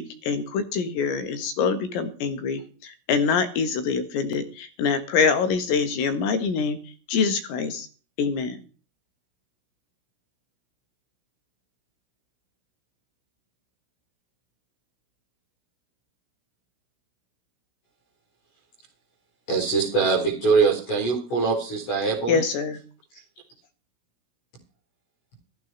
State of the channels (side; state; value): right; late; 17 ms